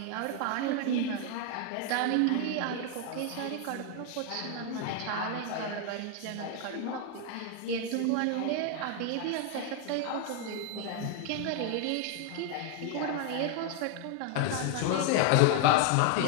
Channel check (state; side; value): different; both; correlation 0.00